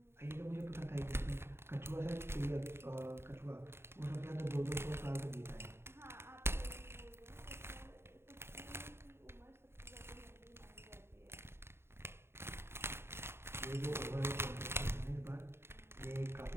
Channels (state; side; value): late; left; 0.12 ms